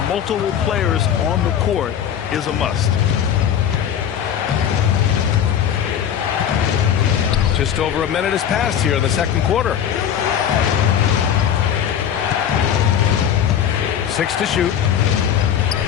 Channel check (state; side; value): quieter; right; 9.2 dB